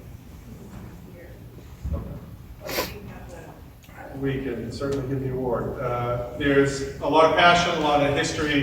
Okay. We can certainly give the award. There's a lot of passion, a lot of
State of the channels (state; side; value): identical; both; correlation 1.00